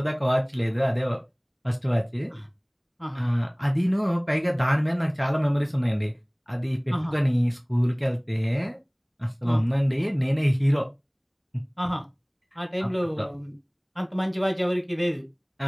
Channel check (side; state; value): both; identical; correlation 1.00